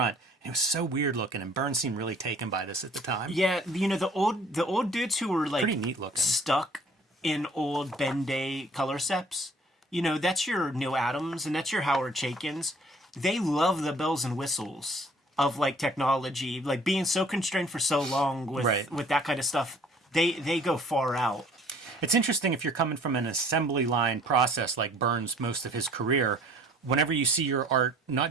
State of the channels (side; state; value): both; normal; correlation 0.54